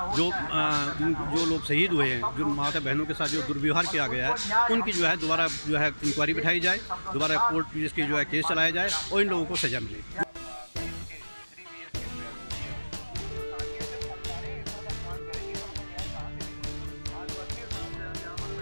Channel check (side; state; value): both; inverted; correlation -1.00